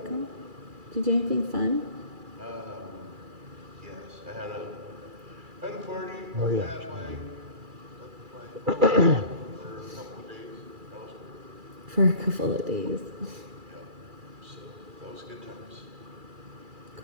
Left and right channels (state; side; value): late; left; 2.3 ms